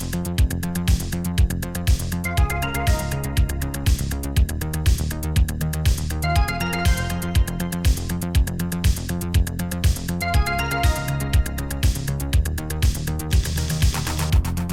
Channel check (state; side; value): identical; both; correlation 1.00